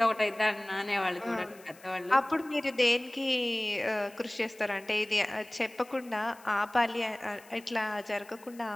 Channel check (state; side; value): noise; left; hiss, 24 dB below the sound